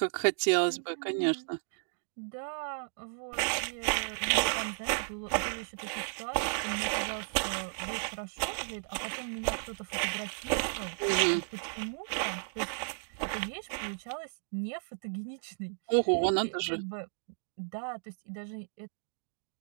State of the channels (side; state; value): left; silent; digital silence